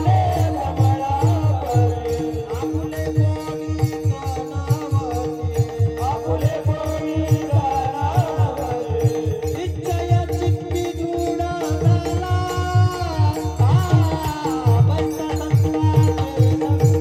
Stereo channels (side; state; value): both; identical; correlation 1.00